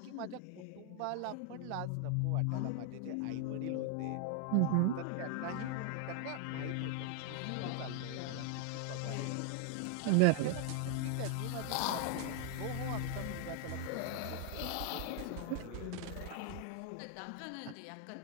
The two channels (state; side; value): different; both; correlation 0.00